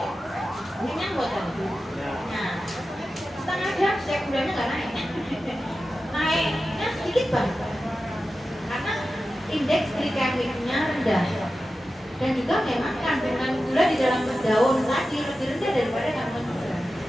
kenyang buatan. Nah setengah jam saya gulanya nggak naiknya sedikit banget karena indeks glikemiknya rendah dan juga memang kandungan gula di dalam daun tadi lebih rendah daripada kandungan gula.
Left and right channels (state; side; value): normal; both; correlation 0.93